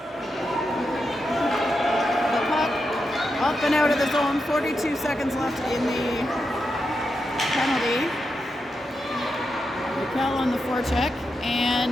the puck up and out of the zone. 42 seconds left in the penalty. Mikkel on the forecheck.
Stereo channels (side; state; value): both; normal; correlation 0.86